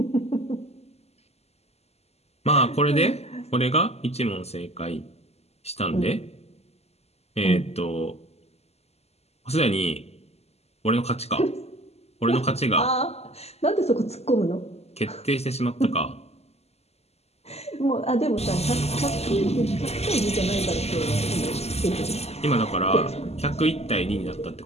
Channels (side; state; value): right; late; 0.30 ms